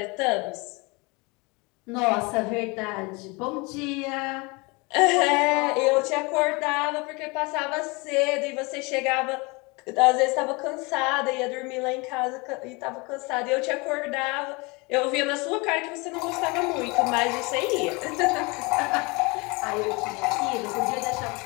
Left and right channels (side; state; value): right; quieter; 27.4 dB